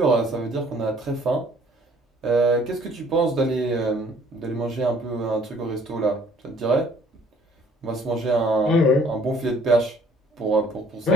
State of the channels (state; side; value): normal; both; correlation 0.58